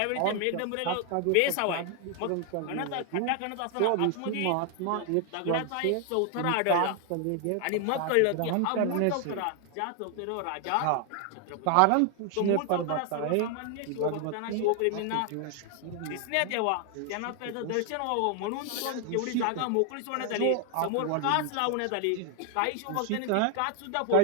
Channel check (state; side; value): different; both; correlation 0.00